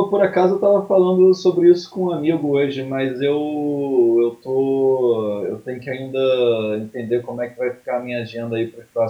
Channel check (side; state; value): both; identical; correlation 1.00